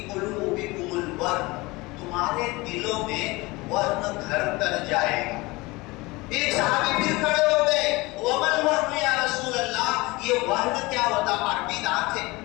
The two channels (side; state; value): right; quieter; 22.7 dB